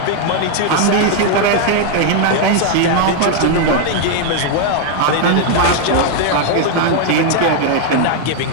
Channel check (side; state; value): both; different; correlation 0.00